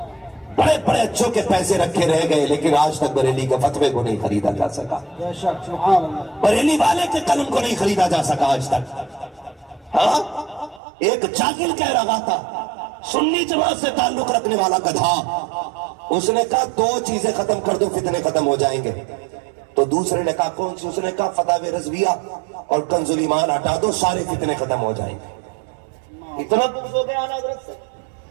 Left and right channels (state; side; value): drops out; left; at 10.8 s